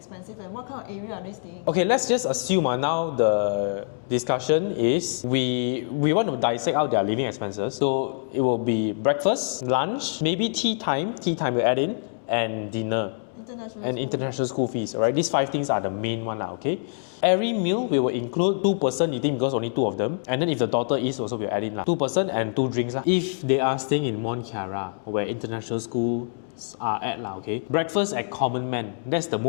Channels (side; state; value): right; silent; digital silence